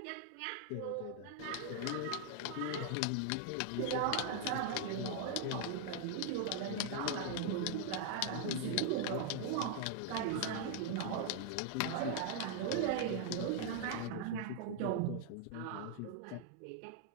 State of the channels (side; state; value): both; different; correlation 0.00